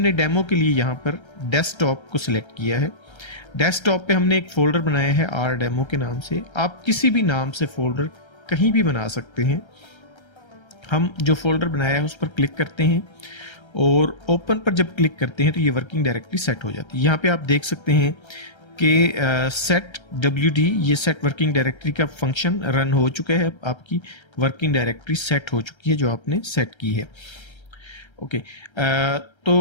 डेमो के लिए यहां पर डेस्कटॉप को सिलेक्ट किया है। डेस्कटॉप पे हमने एक फोल्डर बनाया है आर डेमो के नाम से। आप किसी भी नाम से फोल्डर कहीं भी बना सकते हैं। हम जो फोल्डर बनाया है उस पर क्लिक करते हैं और ओपन पर जब क्लिक करते हैं तो ये वर्किंग डायरेक्टरी सेट हो जाती है। यहाँ पे आप देख सकते हैं कि सेट WD ये सेट वर्किंग डायरेक्टरी का फंक्शन रन हो चुका है। आपकी वर्किंग डायरेक्टरी सेट हो चुकी है जो आपने सेट की है। ओके,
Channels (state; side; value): late; right; 1.3 ms